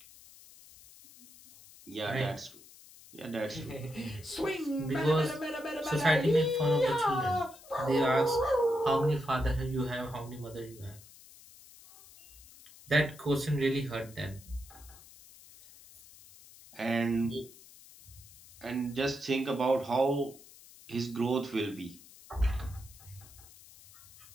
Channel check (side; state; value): left; noise; hiss, 21 dB below the sound